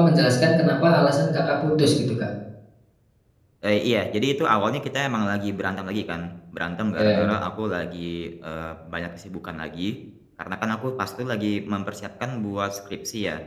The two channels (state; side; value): identical; both; correlation 1.00